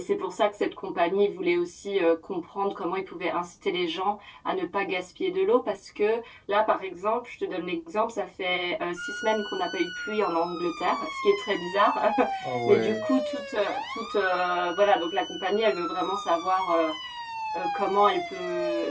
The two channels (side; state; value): both; identical; correlation 1.00